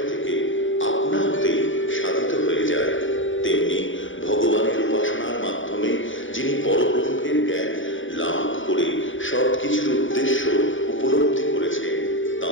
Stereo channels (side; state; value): right; late; 0.56 ms